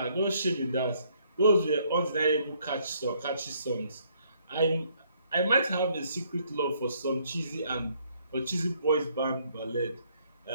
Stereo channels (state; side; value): inverted; both; correlation -0.68